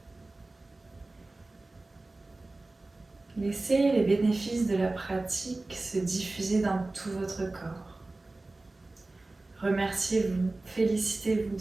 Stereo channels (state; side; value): quieter; left; 3.1 dB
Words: Laissez les bénéfices de la pratique se diffuser dans tout votre corps. Remerciez-vous, félicitez-vous